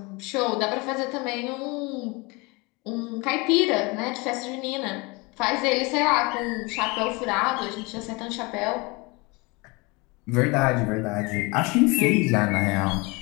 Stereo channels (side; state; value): right; quieter; 26.6 dB